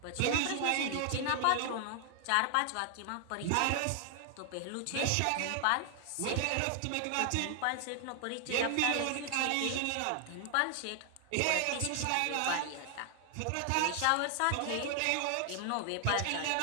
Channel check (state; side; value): different; both; correlation 0.00